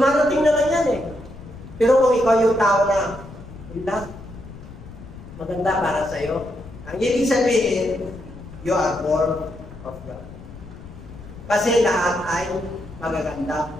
na lang yan eh. Pero kung ikaw yung tao na, hindi, maganda para sa'yo. Ang ibig sabihin, you are born of God. Kasi lahat ay magaganda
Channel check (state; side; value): noise; left; rumble, 15 dB below the sound